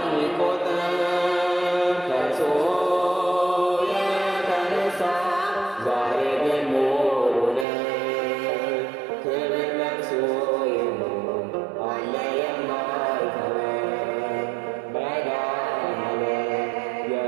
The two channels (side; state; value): left; drops out; at 7.7 s